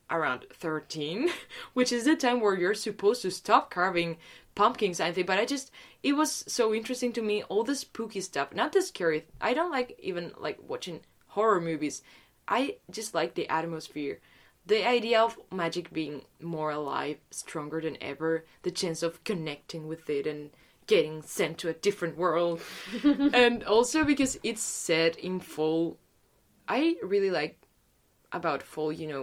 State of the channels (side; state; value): both; identical; correlation 1.00